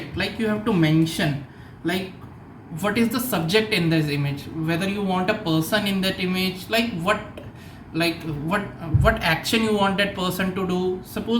Like you have to mention what is the subject in this image, whether you want a person in that image, what action you want that person to do.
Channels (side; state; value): both; identical; correlation 1.00